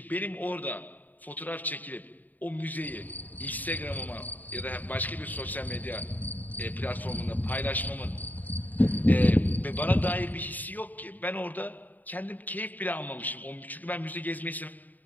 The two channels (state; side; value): late; right; 0.083 ms